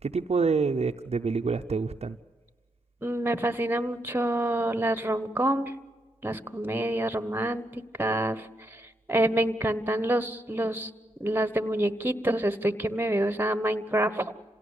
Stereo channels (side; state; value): both; normal; correlation 0.79